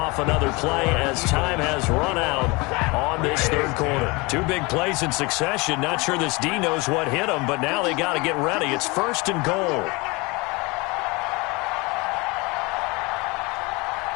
another play as time has run out on this 3rd quarter. 2 big plays in succession. Not sure this D knows what hit them, but now they got to get ready. It's 1st and goal.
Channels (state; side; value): quieter; right; 25.9 dB